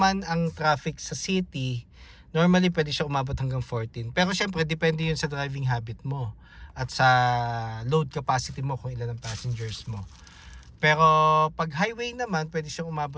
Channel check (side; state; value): both; identical; correlation 1.00